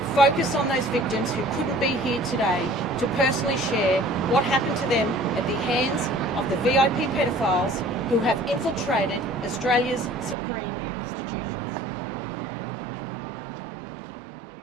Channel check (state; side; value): drops out; left; at 10.4 s